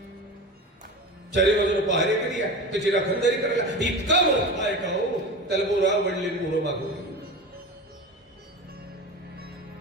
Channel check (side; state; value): both; normal; correlation 0.29